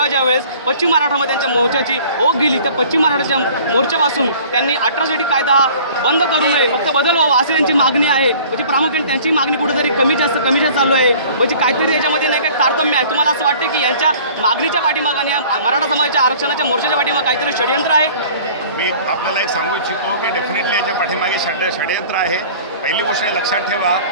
ज्यावेळेस पश्चिम मराठामध्ये त्यांच्या मोर्चाची ओघ गेली तर पश्चिम मराठाच्या मोर्चापासून त्यांनी ॲट्रॉसिटी कायदा हा बंद करू नये, फक्त बदल व्हावा अशी त्यांची मागणी आहे। म्हणजे प्रामुख्याने त्यांची मागणी कुठेतरी कमी जास्त चालू आहे, म्हणजे काहीतरी याच्यामध्ये नाही काही तारतम्य आहे। तुम्हाला असं वाटतं की यांच्या मागणीच्या पाठीमागे आणि मराठा समाजाच्या आरक्षणाच्या मोर्चाच्या पाठीमागे काहीतरी षडयंत्र आहे? मी आपल्याला एक सांगू इच्छितो की डेफिनेटली याच्या पाठीमागे षडयंत्र आहे। पहिली गोष्ट लक्षात ठेवा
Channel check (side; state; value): both; inverted; correlation -0.48